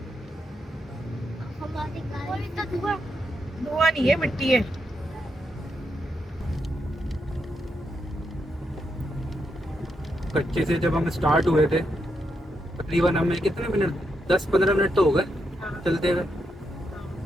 हमारी गाड़ी का धुआं धुआं नहीं है, मिट्टी है। कच्चे से जब हम स्टार्ट हुए थे, तकरीबन हमें कितने मिनट, 10-15 मिनट तो हो गए चलते हुए।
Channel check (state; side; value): normal; both; correlation 0.82